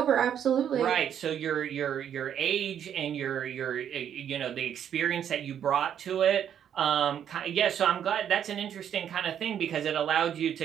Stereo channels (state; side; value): quieter; left; 9.2 dB